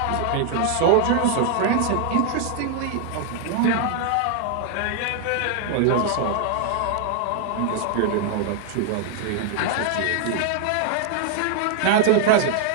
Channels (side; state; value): both; different; correlation 0.00